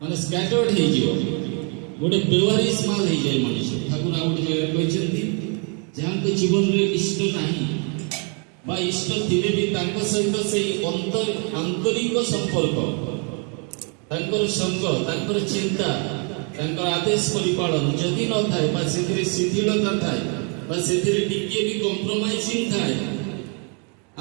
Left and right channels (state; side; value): quieter; left; 37.1 dB